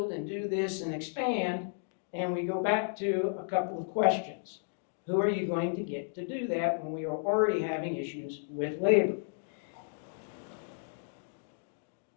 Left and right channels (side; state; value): right; silent; digital silence